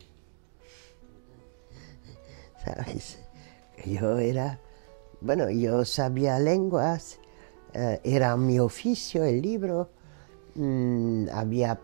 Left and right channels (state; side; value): silent; left; 58 dB below the other